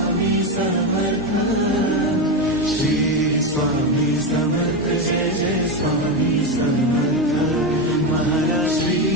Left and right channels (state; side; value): normal; both; correlation 0.12